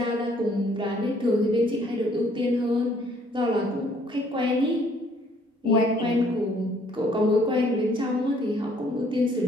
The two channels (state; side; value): normal; both; correlation 0.62